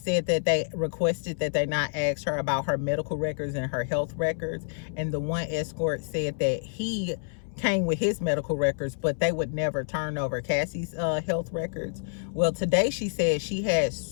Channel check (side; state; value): right; silent; 59 dB below the other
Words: that they requested that they not ask her about her medical records and her health records, and the one escort said that he came with his medical records, but they would never turn over Cassie's health records. Well, today she said she had